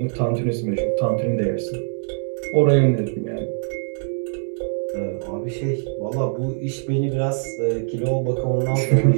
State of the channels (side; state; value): left; silent; digital silence